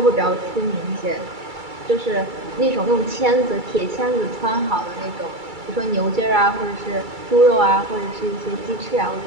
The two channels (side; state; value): left; late; 2.3 ms